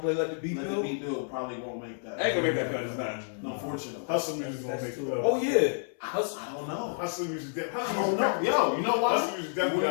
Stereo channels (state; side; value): silent; right; 58 dB below the other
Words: play Let the Beat Let the Build. Beat Build probably won't make that. I ain't gonna make that cut. It's not. No, unfortunately. Hustle music gonna make it up. Oh yeah. I don't know. Hustle music. I don't know. Yo, you know what? Hustle music You definitely